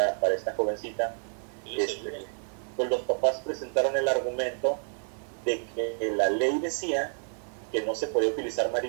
jovencita. Pues los papás presentaron el argumento de que la ley decía que no se podía utilizar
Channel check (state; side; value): silent; left; 58 dB below the other